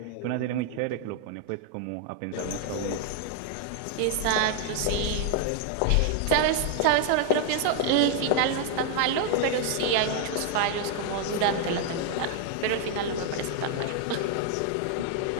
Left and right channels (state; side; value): different; both; correlation 0.00